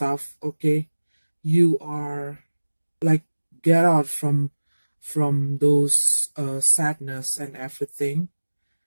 okay? You are like get out from those sadness and everything,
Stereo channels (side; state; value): both; inverted; correlation -1.00